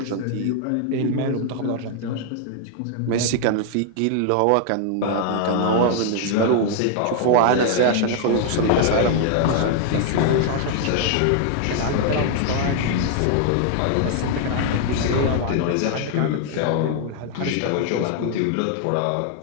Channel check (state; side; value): different; both; correlation 0.00